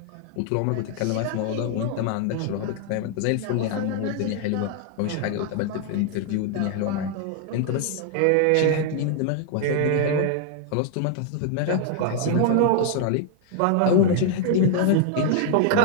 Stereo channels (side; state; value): both; different; correlation 0.00